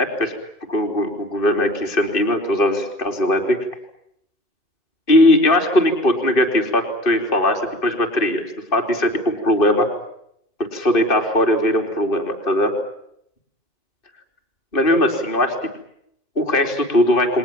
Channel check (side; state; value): right; late; 2.6 ms